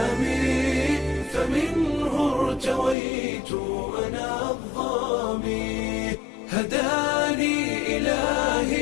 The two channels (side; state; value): right; drops out; at 3.0 s